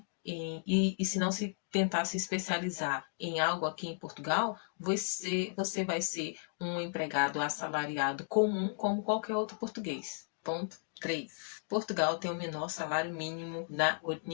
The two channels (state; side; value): silent; right; digital silence